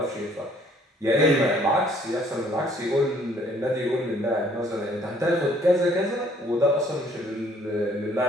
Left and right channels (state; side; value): normal; both; correlation 0.61